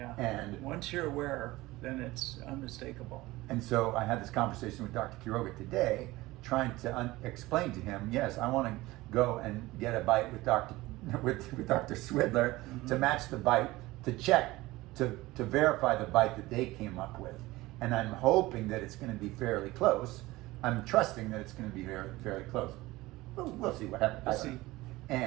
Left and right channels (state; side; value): quieter; left; 19.2 dB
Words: And once you're aware, then it's unmistakable. And so I had this conversation with Dr. Quiroga today, trying to explain to him, yes, I want to go and get a bite with Dr. Swidler to match the bite, to check, to verify the bite that they came up with. And I'm hoping that it's going to be fairly close. I'm trusting that it's going to be fairly close. We'll see what happens. We'll see.